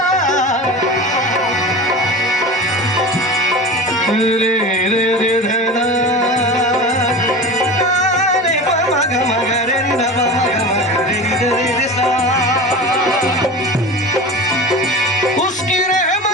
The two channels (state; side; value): normal; both; correlation 0.31